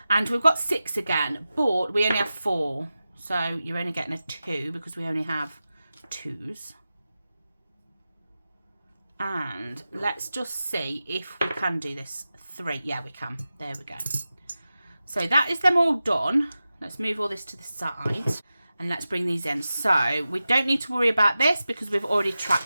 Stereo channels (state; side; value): inverted; both; correlation -0.93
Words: And we've got 6 again, but we only have 4. So you're only getting a 2 because we only have 2s. And let's just see if we can do this. 3. Yeah, we can. There we go. So that is them all done. Let's move all this to the side. And let's bring these in. So we don't need to worry about this because we've already